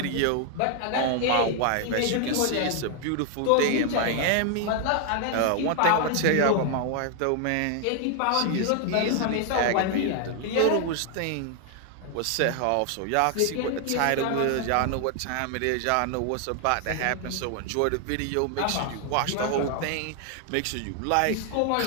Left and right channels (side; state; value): both; different; correlation 0.00